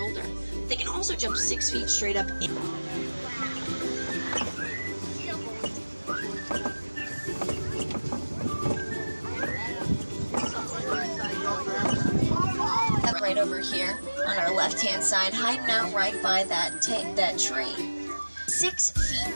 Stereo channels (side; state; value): both; inverted; correlation -1.00